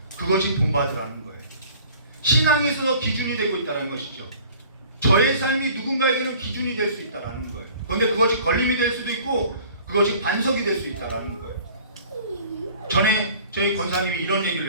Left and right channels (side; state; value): both; inverted; correlation -0.49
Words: 그것이 본받으라는 거예요. 신앙에 있어서 기준이 되고 있다는 것이죠. 저의 삶이 누군가에게는 기준이 될 수 있다는 거예요. 그런데 그것이 걸림이 될 수도 있고 그것이 반석이 될 수 있다는 거예요. 전에 저희 권사님이 이런